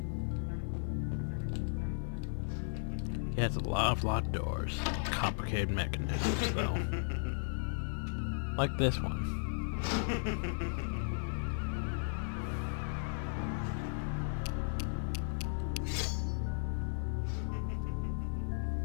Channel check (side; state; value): right; silent; digital silence